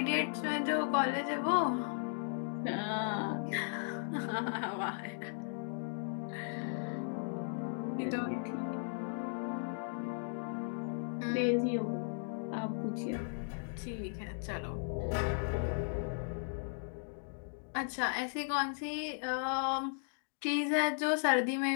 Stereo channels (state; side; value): silent; right; digital silence